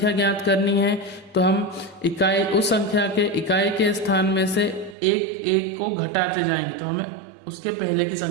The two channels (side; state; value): left; drops out; at 5.0 s